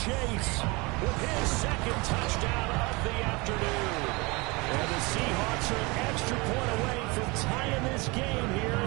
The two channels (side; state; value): left; quieter; 25.9 dB